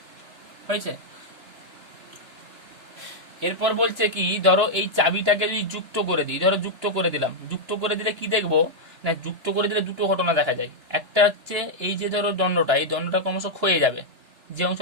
হয়েছে? এরপর বলছে কি, ধরো এই চাবিটাকে যদি যুক্ত করে দিই, ধরো যুক্ত করে দিলাম, যুক্ত করে দিলে কি দেখবো না, যুক্ত করে দিলে দুটো ঘটনা দেখা যায়। একটা হচ্ছে এই যে ধরো দণ্ডটা, এই দণ্ডটা ক্রমশ ক্ষয়ে যাবে, যে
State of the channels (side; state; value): left; late; 2.9 ms